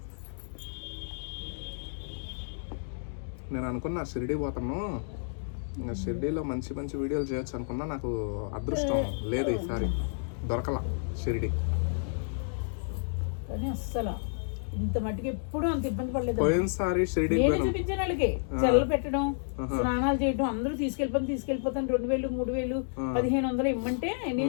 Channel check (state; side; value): silent; right; digital silence